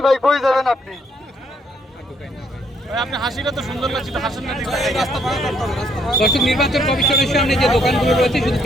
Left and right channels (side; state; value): both; normal; correlation 0.69